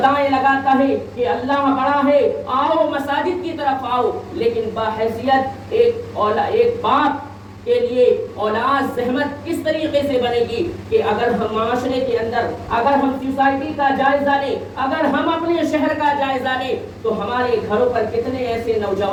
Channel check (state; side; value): identical; both; correlation 1.00